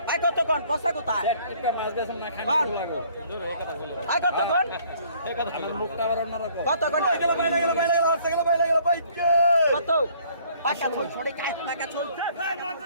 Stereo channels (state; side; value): inverted; both; correlation -0.59